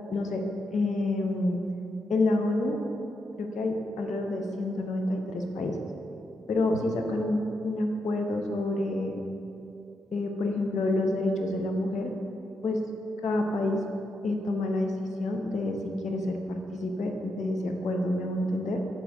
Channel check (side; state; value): both; normal; correlation 0.83